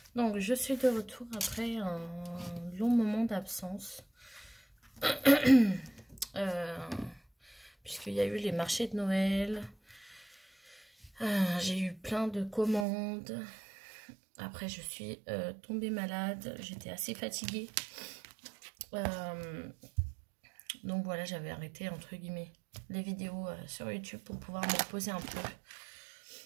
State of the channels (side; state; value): left; drops out; at 12.9 s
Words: Donc je suis de retour après un long moment d'absence. Puisqu'il y a eu les marchés de Noël. J'ai eu plein de commandes. Après je suis tombée malade. J'étais assez fatiguée. Donc voilà, j'avais arrêté entre guillemets les vidéos sur YouTube pour pouvoir me reposer un peu.